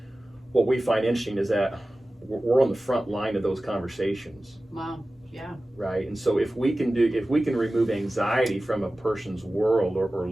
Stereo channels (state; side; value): normal; both; correlation 0.96